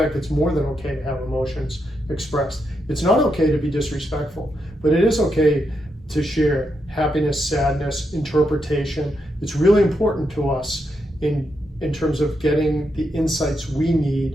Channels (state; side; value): normal; both; correlation 0.82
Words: it's more than okay to have emotions expressed. It's not okay to be disrespectful, but it is okay to share happiness, sadness, interpretation. It's really important to us in terms of getting the insights we